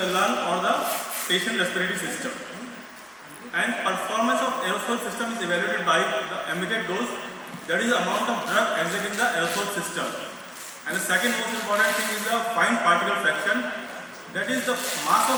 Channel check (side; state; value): both; identical; correlation 1.00